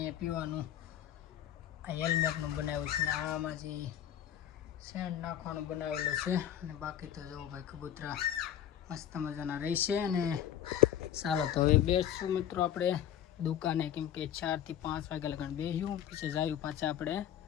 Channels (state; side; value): quieter; right; 10.5 dB